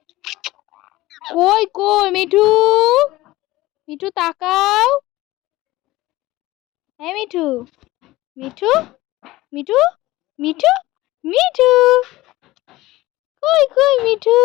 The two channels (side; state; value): right; quieter; 18.1 dB